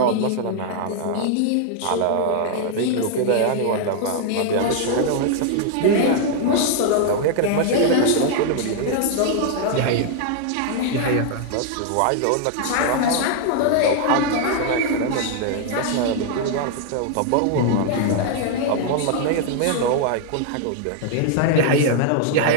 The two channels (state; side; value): different; both; correlation 0.00